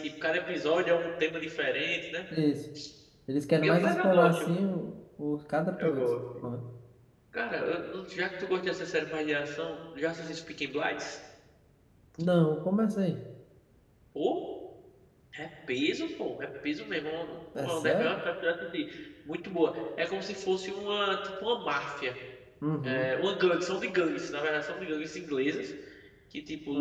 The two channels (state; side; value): identical; both; correlation 1.00